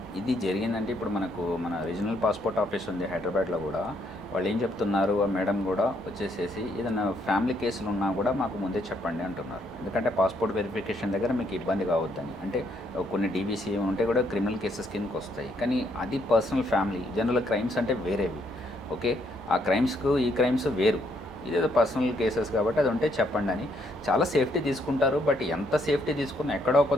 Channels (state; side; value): normal; both; correlation 0.72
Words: ఇది జరిగిందంటే ఇప్పుడు మన రీజనల్ పాస్పోర్ట్ ఆఫీస్ ఉంది హైదరాబాద్లో కూడా. వాళ్ళు ఏం చెప్తున్నారు, ఆ మేడం కూడా వచ్చేసేసి ఏదైనా ఫ్యామిలీ కేసులు ఉన్నా కూడా మాకు ముందే చెప్పండి అంటున్నారు. ఎందుకంటే పాస్పోర్ట్ వెరిఫికేషన్ దగ్గర మీకు ఇబ్బంది కావద్దని. అంటే కొన్ని డీబీసీ ఉంటే కూడా క్రిమినల్ కేసెస్ కిందకి వస్తాయి, కానీ అది పర్సనల్ ఫ్యామిలీ. జనరల్ క్రైమ్స్ అంటే వేరేవి. ఓకే, ఆ క్రైమ్స్కు ఈ క్రైమ్స్ వేరు, ఇదేదో పర్సనల్ కేసెస్ కాబట్టి అది ఉంటే చెప్పండి అని చాలా సేఫ్టీ తీసుకుంటారు. బట్ ఎంత సేఫ్టీ తీసుకున్నా ఎక్కడో